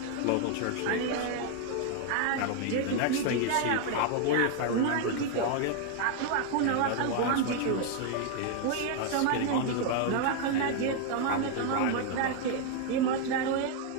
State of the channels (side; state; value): both; different; correlation 0.00